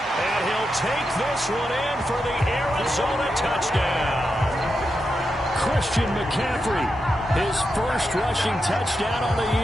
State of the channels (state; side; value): normal; both; correlation 0.87